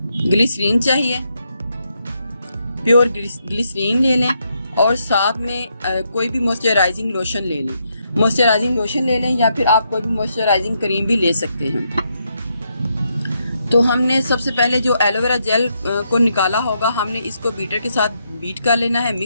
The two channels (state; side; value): inverted; both; correlation -0.79